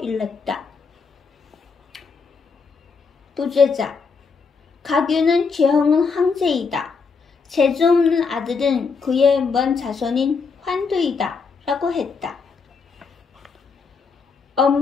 일렀다. 부제자 가규는 재형은 황제이다. 재주 없는 아들은 그의 먼 자손인 환두이다 라고 했다.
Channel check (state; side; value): quieter; right; 5.0 dB